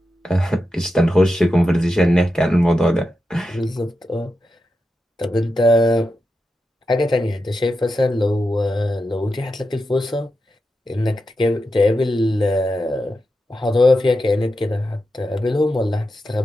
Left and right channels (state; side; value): normal; both; correlation 0.89